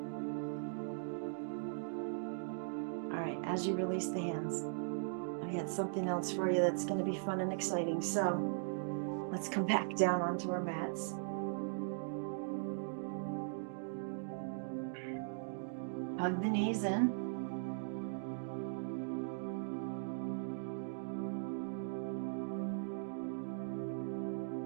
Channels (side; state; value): left; silent; digital silence